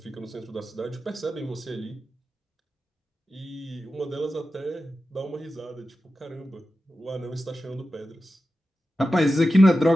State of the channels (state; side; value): normal; both; correlation 0.92